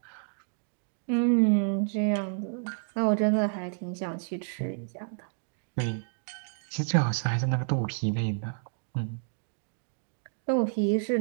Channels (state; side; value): silent; left; digital silence